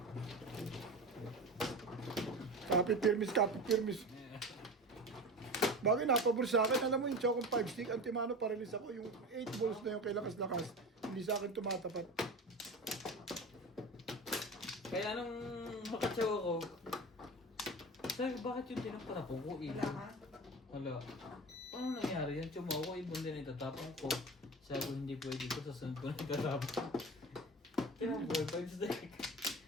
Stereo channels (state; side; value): normal; both; correlation 0.30